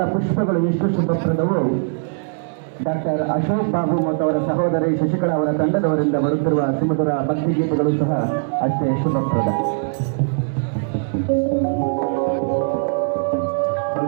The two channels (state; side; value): silent; left; digital silence